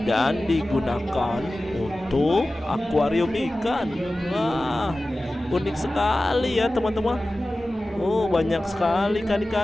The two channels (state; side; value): normal; both; correlation 0.96